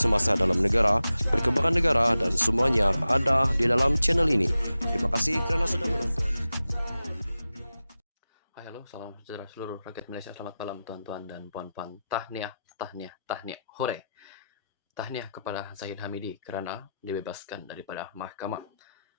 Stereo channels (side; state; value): both; inverted; correlation -0.92